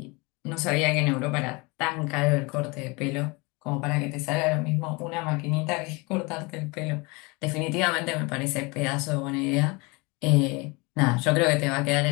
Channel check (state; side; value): quieter; right; 26.8 dB